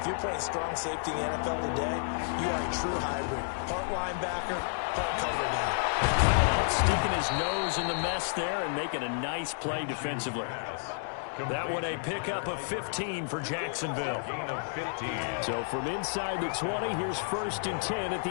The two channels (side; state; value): right; silent; digital silence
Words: you're playing strong safety in the NFL today, you are a true hybrid. Part linebacker, part cover guy. Sticking his nose in the mess there and making a nice play defensively. That one a pickup of 15 for Jacksonville. Gain of 15. So from inside the 20, here's 1st and 10 at